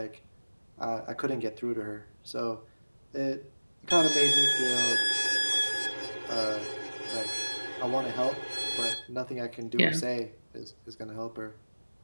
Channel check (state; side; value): inverted; both; correlation -1.00